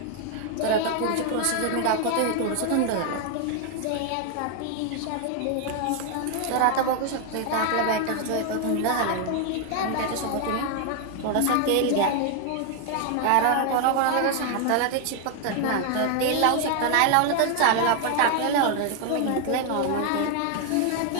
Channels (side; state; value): both; different; correlation 0.00